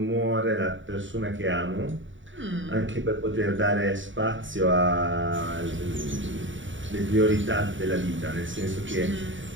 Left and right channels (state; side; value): late; left; 0.56 ms